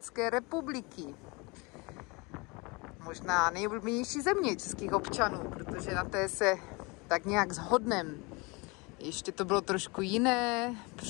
republiky. Možná nejoblíbenější země českých občanů, protože na té se tak nějak shodneme. Ještě to bylo trošku jiné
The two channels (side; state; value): right; quieter; 27.3 dB